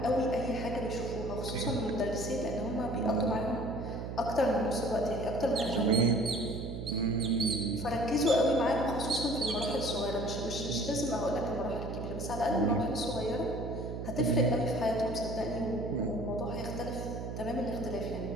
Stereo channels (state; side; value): noise; right; hum, 6 dB below the sound